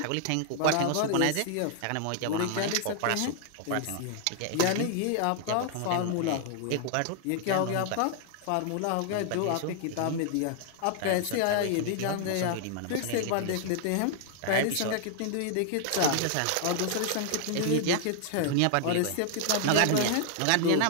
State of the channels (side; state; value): both; different; correlation 0.00